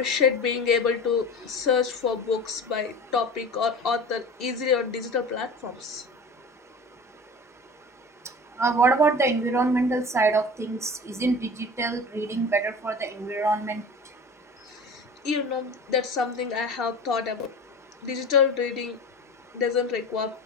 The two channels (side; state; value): both; normal; correlation 0.35